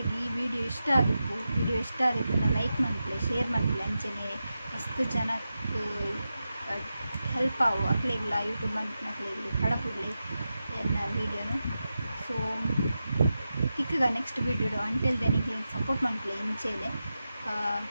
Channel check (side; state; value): both; inverted; correlation -0.91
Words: ಈ ವಿಡಿಯೋ ಇಷ್ಟ ಆದಿಪ್ಪು. ವಿಡಿಯೋ ಇಷ್ಟ ಆದಿಪ್ಪನ್ನ ಲೈಕ್ ಮಾಡ್ಲೆ ಶೇರ್ ಮಾಡ್ಲೆ ಅಂಚನೆ ಮಸ್ತ್ ಜನಕ್ಕೆ ಹೆಲ್ಪ್ ಆವು ಅಕ್ಲೆಗ್ಲ ಯೂಟ್ಯೂಬ್ ಮನ್ಪನಕ್ಲೆಗ್ಲಿ ಕಡಪುಡ್ಲಿ ಎನ್ನ ವೀಡಿಯೋನು. ಸೊ ತಿಕ್ಕಗ ನೆಕ್ಸ್ಟ್ ವೀಡಿಯೋ ಅಂಟಿಲ್ ದೆನ್ ನಿಕ್ಲೆ ಸಪೋರ್ಟ್ ಮಾಡ್ಲೆ ಇಂಚೆದೆ.